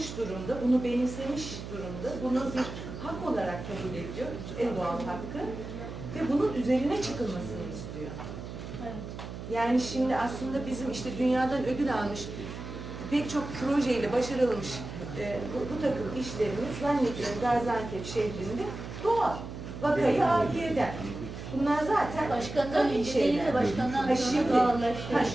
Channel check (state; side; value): noise; right; hum, 10 dB below the sound